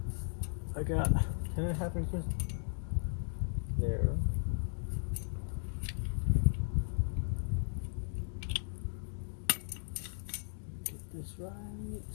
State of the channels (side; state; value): right; silent; digital silence